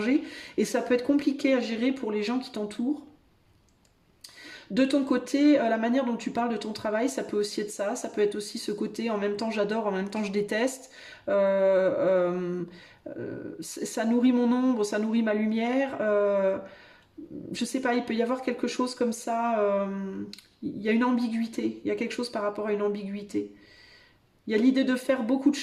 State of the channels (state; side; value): identical; both; correlation 1.00